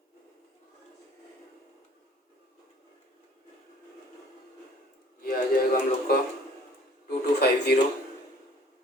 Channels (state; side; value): normal; both; correlation 0.54